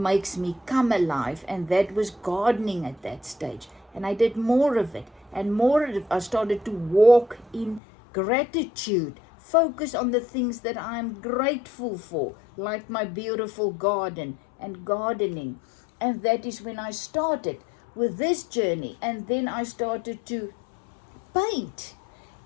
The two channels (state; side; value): drops out; right; at 7.8 s